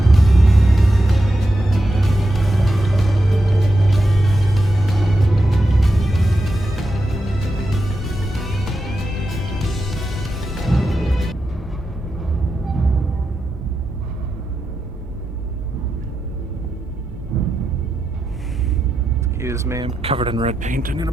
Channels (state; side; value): normal; both; correlation 0.87